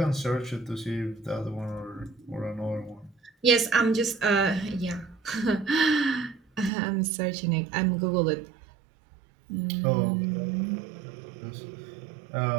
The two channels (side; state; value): left; drops out; at 6.7 s